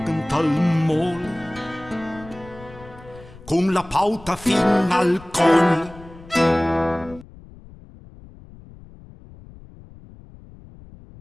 tal mole, con la pauta fin al collo.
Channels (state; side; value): noise; left; rumble, 20 dB below the sound